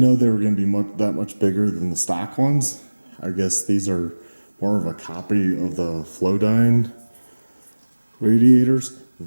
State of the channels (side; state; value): both; inverted; correlation -1.00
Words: they were gonna be that much bigger than the stock ones. I guess these are more of a copy of the Flowdyne radiators.